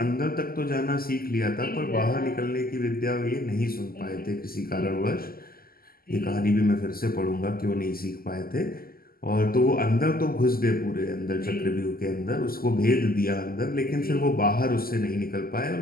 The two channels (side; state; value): right; late; 0.43 ms